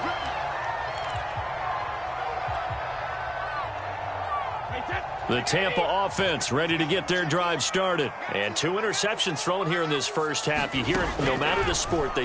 The Tampa offense ready to get their drive started. And 2 interceptions thrown here in this first half. You hear it, no matter the sport, they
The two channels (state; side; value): identical; both; correlation 1.00